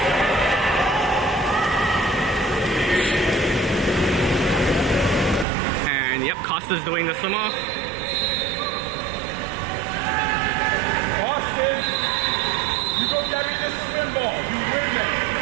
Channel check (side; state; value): left; drops out; at 5.5 s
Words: And yep, Costa's doing the swim off. Austin, you go get me this swim ball. You win it.